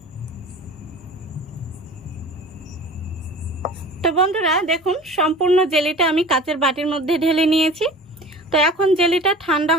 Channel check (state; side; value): normal; both; correlation 0.40